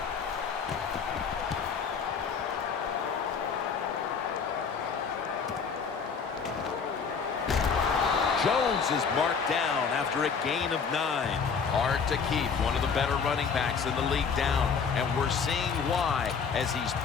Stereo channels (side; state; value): right; quieter; 5.9 dB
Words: Jones is marked down after a gain of 9. Hard to keep one of the better running backs in the league down, and we're seeing why as he's